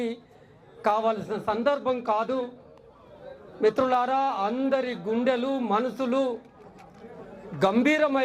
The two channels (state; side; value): identical; both; correlation 1.00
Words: కావలసిన సందర్భం కాదు. మిత్రులారా, అందరి గుండెలు మనసులు